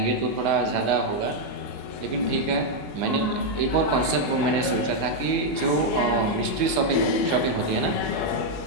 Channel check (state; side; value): late; right; 2.3 ms